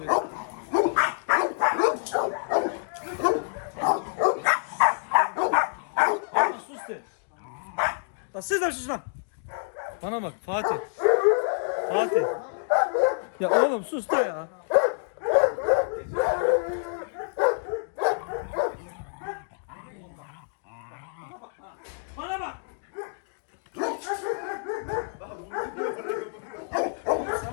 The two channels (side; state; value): right; silent; digital silence